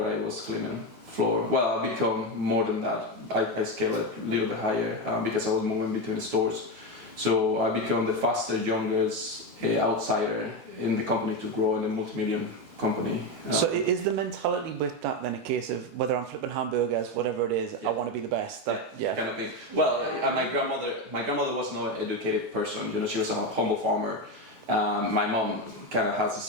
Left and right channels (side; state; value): left; late; 12 ms